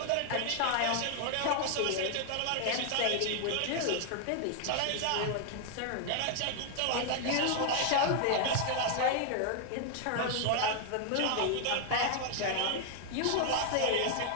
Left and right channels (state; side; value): different; both; correlation 0.00